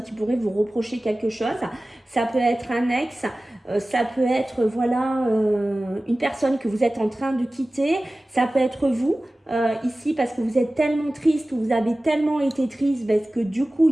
qui pourraient vous reprocher quelque chose. Ça peut être un ex, ça peut être voilà une personne que vous êtes en train de quitter. Ça peut être vous ici parce que vous êtes tellement triste ou vous avez tellement été triste parce que du coup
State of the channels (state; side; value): normal; both; correlation 0.97